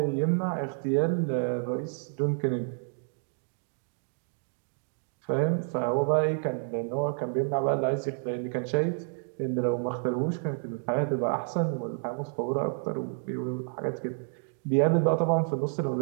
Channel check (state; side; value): silent; left; 58 dB below the other